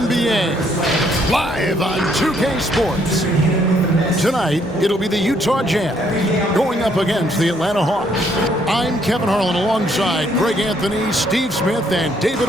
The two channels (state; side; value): normal; both; correlation 0.69